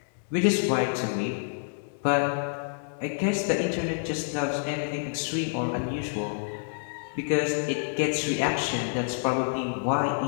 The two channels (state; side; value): silent; right; digital silence